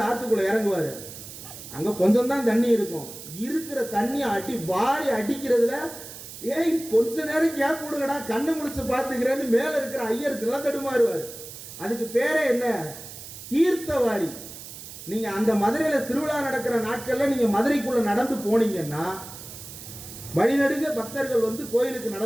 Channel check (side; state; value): right; noise; hiss, 13 dB below the sound